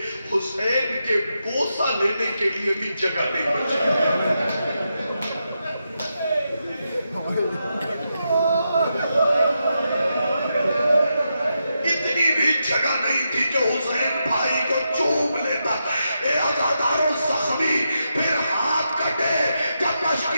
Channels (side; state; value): both; inverted; correlation -0.85